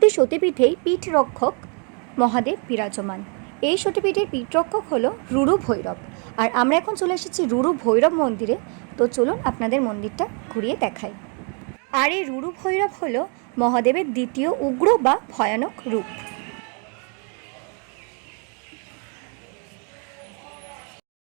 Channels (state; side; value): quieter; left; 38.3 dB